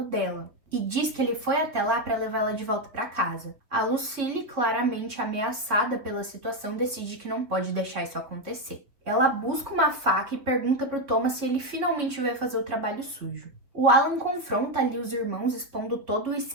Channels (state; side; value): late; left; 3.7 ms